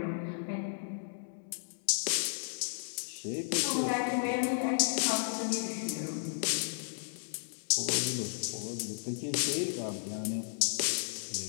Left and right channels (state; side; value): silent; right; digital silence